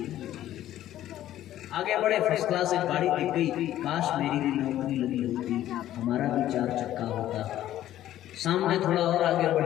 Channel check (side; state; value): right; quieter; 12.9 dB